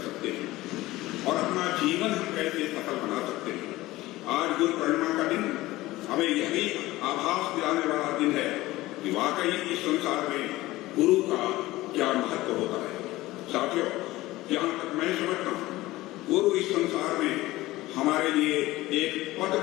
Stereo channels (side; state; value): right; quieter; 18.0 dB